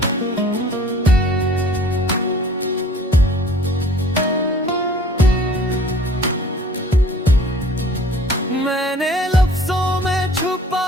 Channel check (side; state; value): both; normal; correlation 0.50